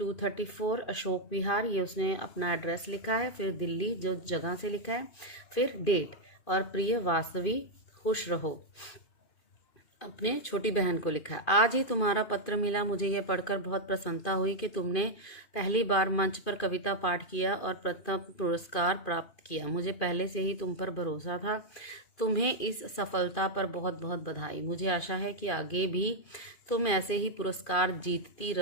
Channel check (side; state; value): right; late; 2.5 ms